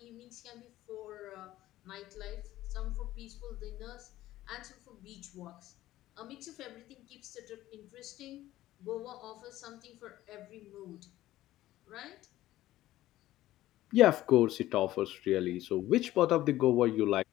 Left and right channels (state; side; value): quieter; right; 15.1 dB